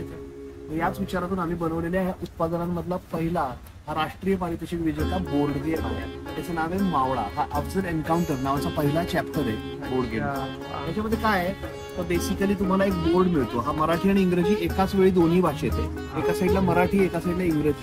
याच विचारातून आम्ही बनवलेल्या ह्या उत्पादनांमधला पहिला हा राष्ट्रीय पारितोषिक विजेता बोर्ड गेम आहे. त्याचं नाव आहे मावळा. हा अफजल एन्काउंटर नावाचा पहिला चॅप्टर आहे बोर्ड गेम. त्याच्यामध्ये काय आहे तर बेसिकली तुम्हाला एक बोर्ड मिळतो. हा मराठी आणि इंग्रजी एकाच वेळी दोन्ही भाषेत आहे. एका साईडला मराठी, एका साईडला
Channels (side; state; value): both; identical; correlation 1.00